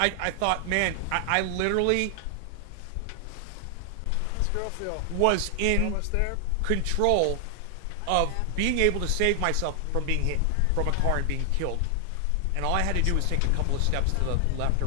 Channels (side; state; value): both; different; correlation 0.00